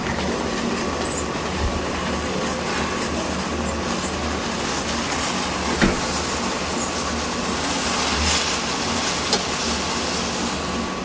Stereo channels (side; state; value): both; identical; correlation 1.00